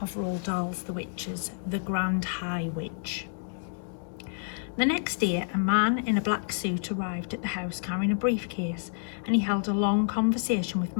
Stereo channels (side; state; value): right; silent; digital silence